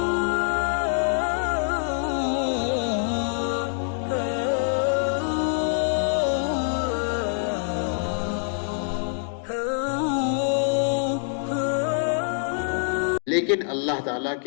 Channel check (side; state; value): right; silent; digital silence